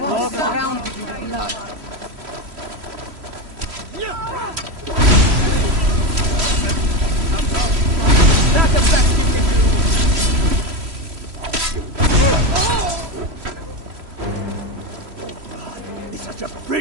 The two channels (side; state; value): left; late; 3.1 ms